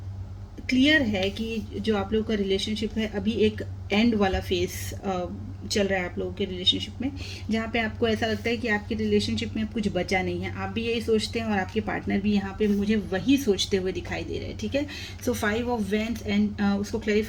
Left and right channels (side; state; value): both; identical; correlation 1.00